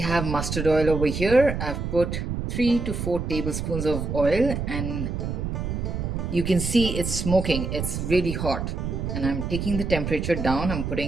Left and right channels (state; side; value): noise; right; rumble, 3 dB below the sound